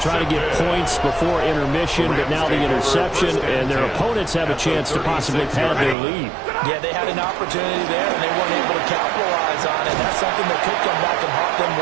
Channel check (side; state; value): left; drops out; at 6.0 s